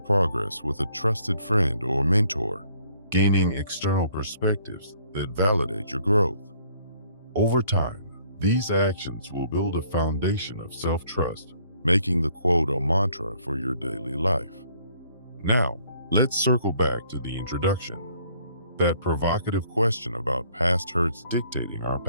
with a trusted friend or mentor, gaining external perspectives that validate your growth. Over time, these actions will build a foundation of self-trust, making the quote a mantra for your daily life. Now, let's circle back to the introduction, that provocative question about past hurts dictating our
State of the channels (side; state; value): both; inverted; correlation -0.63